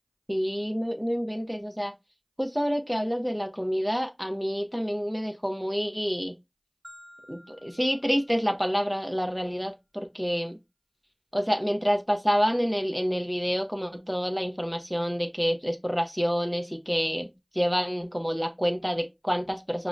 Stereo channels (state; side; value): identical; both; correlation 1.00